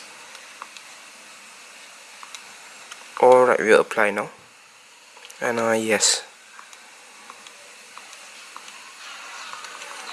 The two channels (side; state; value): both; identical; correlation 1.00